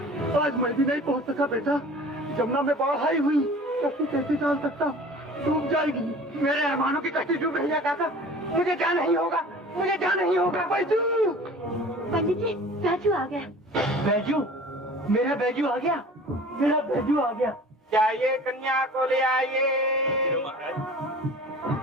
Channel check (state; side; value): normal; both; correlation 0.43